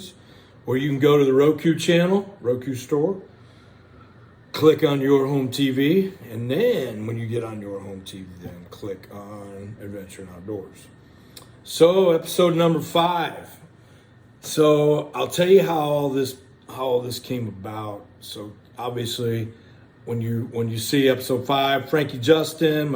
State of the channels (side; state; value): both; identical; correlation 1.00